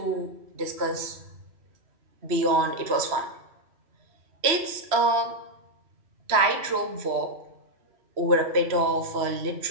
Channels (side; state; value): left; late; 3.0 ms